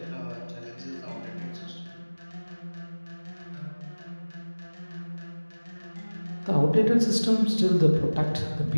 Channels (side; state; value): both; inverted; correlation -1.00